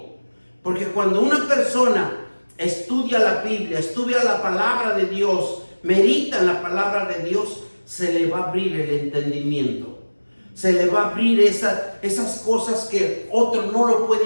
porque cuando una persona estudia la Biblia, estudia la palabra de Dios, medita en la palabra de Dios, se le va a abrir el entendimiento. Se le va a abrir esas cosas que otro no lo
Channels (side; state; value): both; inverted; correlation -1.00